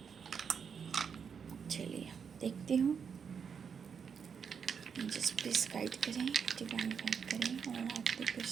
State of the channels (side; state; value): left; quieter; 6.7 dB